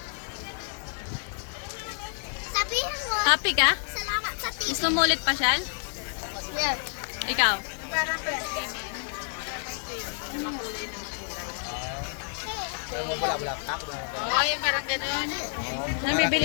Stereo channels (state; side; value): silent; right; 56 dB below the other